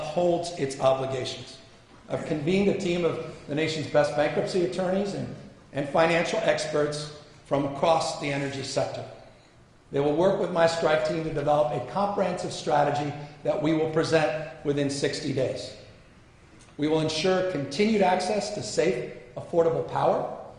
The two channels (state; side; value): identical; both; correlation 1.00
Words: its obligations. I've convened a team of the nation's best bankruptcy attorneys and financial experts from across the energy sector. They will work with my strike team to develop a comprehensive strategy that we will present within 60 days. We will ensure continued access to safe, affordable power.